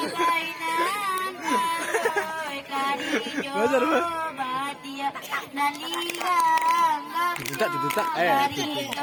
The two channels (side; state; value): both; identical; correlation 1.00